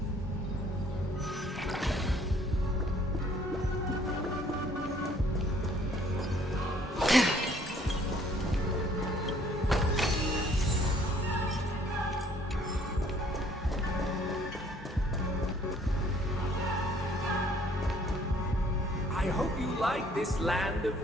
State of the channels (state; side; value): normal; both; correlation 0.59